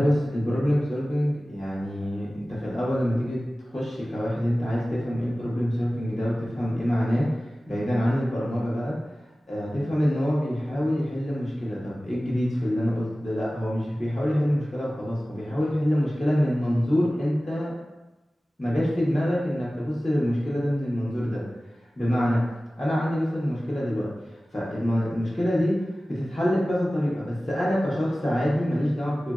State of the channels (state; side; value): normal; both; correlation 0.97